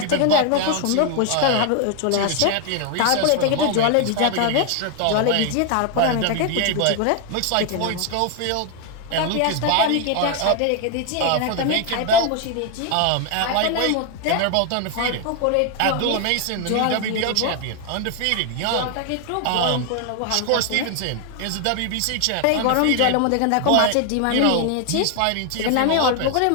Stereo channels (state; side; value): different; both; correlation 0.01